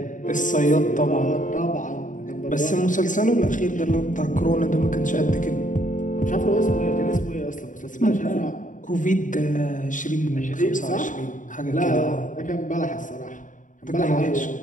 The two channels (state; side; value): late; right; 0.37 ms